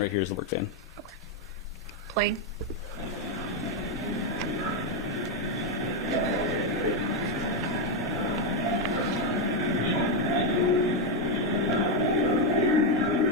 right here is the work van. Playing.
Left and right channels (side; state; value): both; normal; correlation 0.04